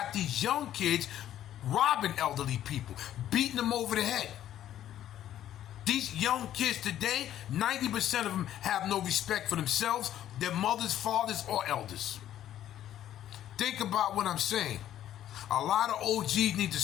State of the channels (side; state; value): right; quieter; 11.7 dB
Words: these young kids robbing elderly people, beating them over the head. These young kids today, 90% of them have no respect for themselves, their mothers, fathers, or elders. Think about what I'm saying. A lot of OGs need to